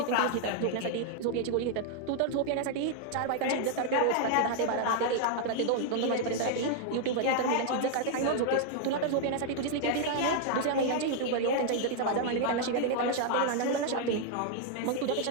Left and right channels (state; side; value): different; both; correlation 0.00